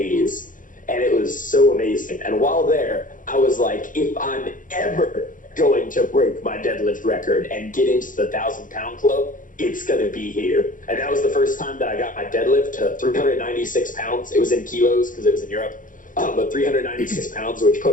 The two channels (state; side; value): late; right; 0.38 ms